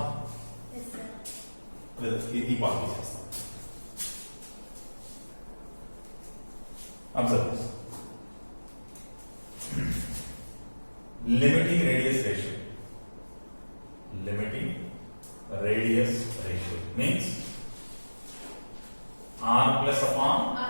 Yes, sir. ఈ part చేస్తాం. Observe this. Limiting radius ratio. Limiting radius ratio means R plus upon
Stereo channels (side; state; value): both; inverted; correlation -1.00